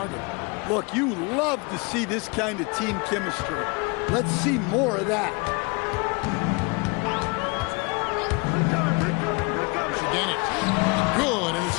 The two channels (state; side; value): quieter; right; 29.4 dB